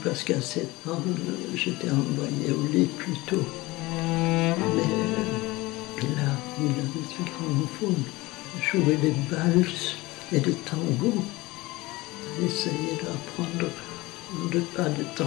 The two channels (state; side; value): quieter; right; 20.9 dB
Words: parce qu'à 7 ans, j'étais envoyée au lit plus tôt. Mais là, il avait ce gramophone, jouait des valses et des tangos. Essayait d'apprendre de pas de